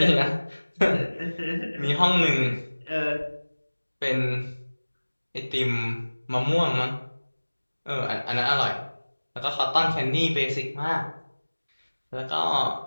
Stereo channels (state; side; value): inverted; both; correlation -1.00